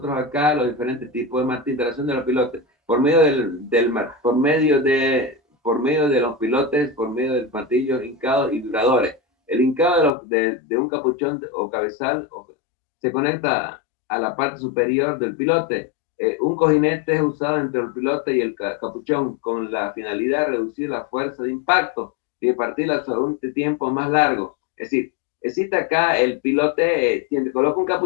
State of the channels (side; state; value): right; drops out; at 10.1 s